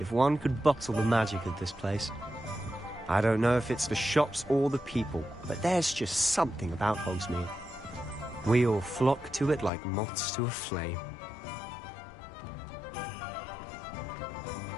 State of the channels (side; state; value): right; drops out; at 9.7 s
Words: one could bottle the magic of this place. I don't know if it's the shops or the people, but there's just something about Hogsmeade. We all flock to it like moths to a flame.